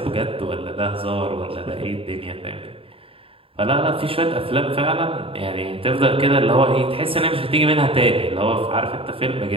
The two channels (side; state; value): left; late; 0.27 ms